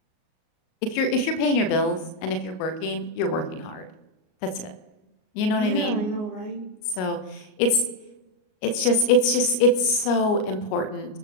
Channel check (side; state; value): right; late; 38 ms